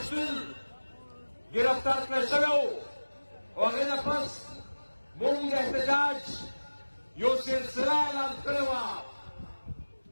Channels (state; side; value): inverted; both; correlation -1.00